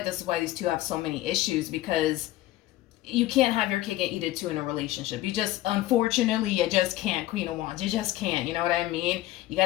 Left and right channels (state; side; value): quieter; right; 15.8 dB